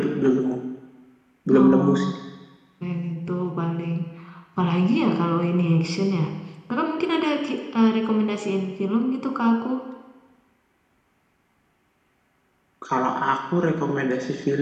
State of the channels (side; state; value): both; identical; correlation 1.00